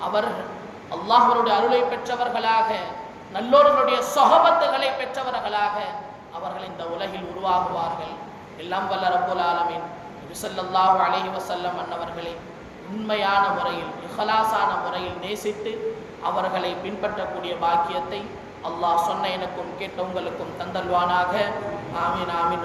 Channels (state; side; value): identical; both; correlation 1.00